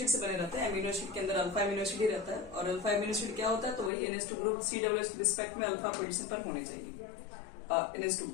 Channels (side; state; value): right; drops out; at 3.9 s